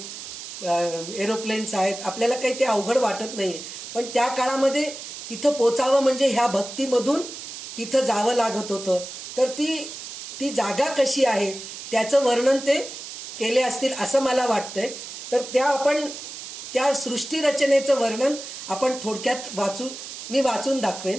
एरोप्लेन्स आहेत आपल्याला काही ते अवघड वाटत नाहीये पण त्या काळामध्ये तिथं पोचावं म्हणजे ह्या भक्तीमधून तिथं जावं लागत होतं तर ती जागा कशी आहे त्याचं वर्णन ते केले असतील असं मला वाटतंय. तर त्या सृष्टी रचनेचं वर्णन आपण थोडक्यात मी वाचून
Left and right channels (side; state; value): right; noise; hiss, 10 dB below the sound